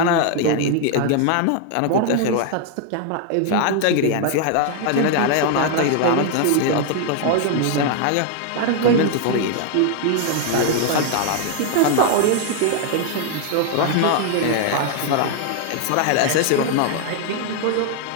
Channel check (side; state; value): both; different; correlation 0.00